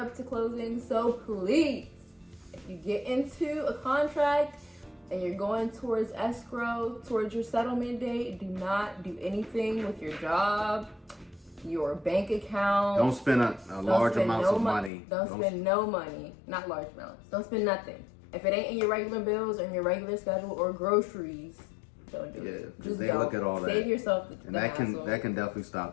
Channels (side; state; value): right; drops out; at 14.9 s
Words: to closing, so please, if you get into a contract and you're going towards escrow, towards your settlement date, do not do anything with your job, your bank account. Don't spend a large amounts of money. Don't spend no money, not large amounts. Don't spend nothing. If it ain't in your regular bills or in your regular schedule or groceries, don't do it. Just they look at all that. Save yourself the and that hassle. can definitely